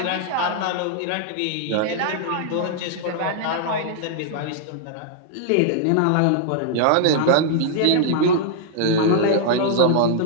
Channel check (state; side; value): different; both; correlation -0.01